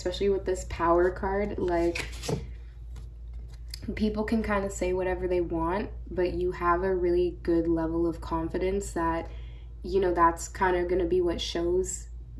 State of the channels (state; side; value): identical; both; correlation 1.00